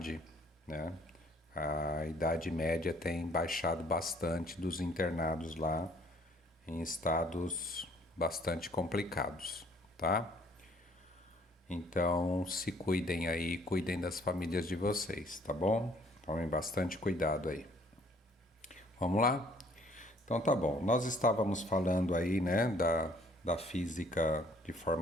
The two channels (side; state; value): both; normal; correlation 0.60